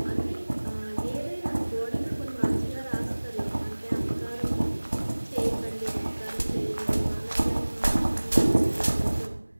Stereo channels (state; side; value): inverted; both; correlation -1.00